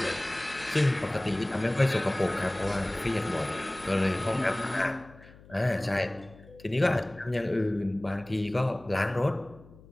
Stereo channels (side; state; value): left; noise; hum, 22 dB below the sound